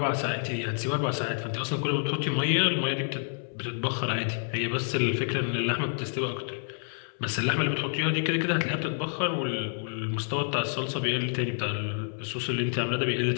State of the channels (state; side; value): silent; right; 59 dB below the other